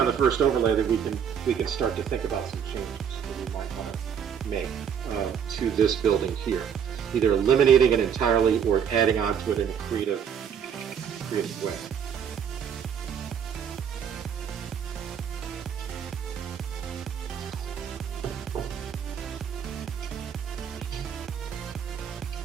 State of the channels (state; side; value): quieter; left; 7.8 dB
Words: the first overlay that we can start to think about some changes that we might want to make to this building here. Either eliminating it entirely or adding onto it in a creative way.